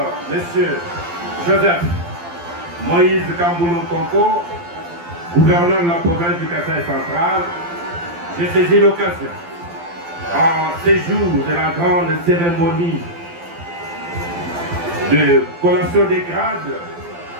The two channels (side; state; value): left; late; 12 ms